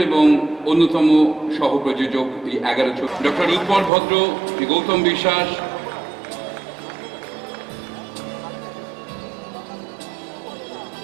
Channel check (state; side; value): drops out; left; at 3.9 s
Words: এবং অন্যতম সহ-প্রযোজক এই 11 ডক্টর উৎপল ভদ্র, শ্রী গৌতম বিশ্বাস,